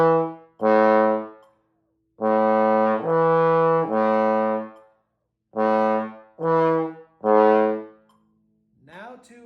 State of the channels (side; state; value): both; identical; correlation 1.00